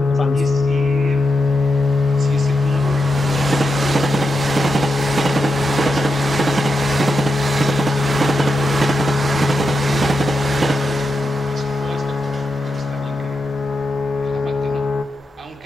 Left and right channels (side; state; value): both; normal; correlation 0.86